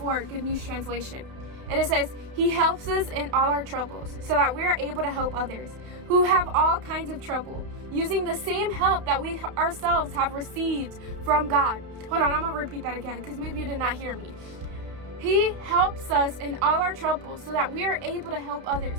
Good News Translation. And it says, He helps us in all our troubles, so that we are able to help others who have all kinds of trouble, using the same help that we ourselves have received from God. Hold on, I'm going to repeat that again, because maybe you did not hear me. He helps us in all our troubles, so that we are able to help others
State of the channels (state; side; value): late; left; 31 ms